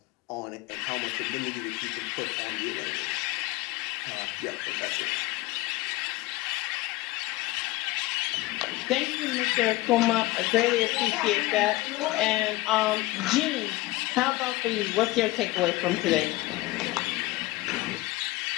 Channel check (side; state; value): right; quieter; 19.3 dB